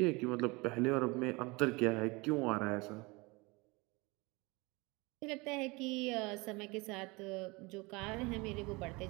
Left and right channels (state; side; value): quieter; left; 25.4 dB